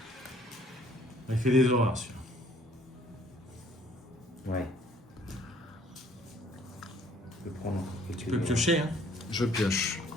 Il fait des horreurs, celui-là. Ouais. Je peux prendre quelques Tu peux piocher, hein. Je pioche.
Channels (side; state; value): both; normal; correlation 0.59